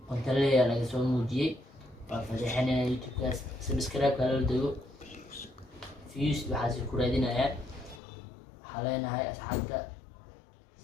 qonta leeyahay laga soo muujiyay waa fadeexinayna YouTube kaas subscribe kala dago views waxa si ku raadinayaan waxaa leenahay asxaabta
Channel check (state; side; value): drops out; right; at 8.0 s